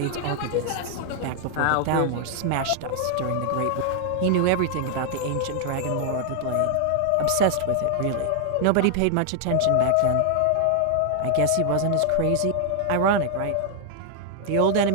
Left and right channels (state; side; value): different; both; correlation 0.00